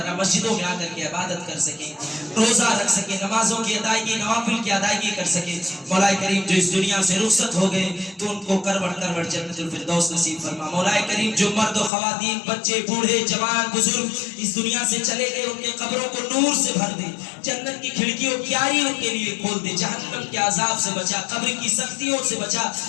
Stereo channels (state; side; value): drops out; right; at 11.9 s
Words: مسجدوں میں آ کر کے عبادت کر سکیں, روزہ رکھ سکیں, نمازوں کی ادائیگی, نوافل کی ادائیگی کر سکیں. مولا کریم جو اس دنیا سے رخصت ہو گئے تو ان کو کروڑ کروڑ جنت الفردوس نصیب فرما. مولا کریم جو مرد و خواتین, بچے, بوڑھے, جوان, بزرگ اس دنیا سے چلے گئے ان کے قبروں کو نور سے بھر دے, جنت کی کھڑکیوں کیاری ان کے لیے کھول دے, جہنم کے عذاب سے بچا, قبر کی سختیوں سے بچا,